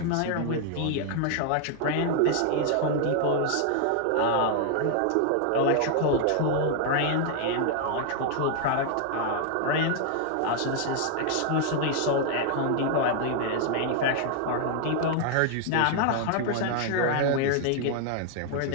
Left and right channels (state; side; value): different; both; correlation 0.00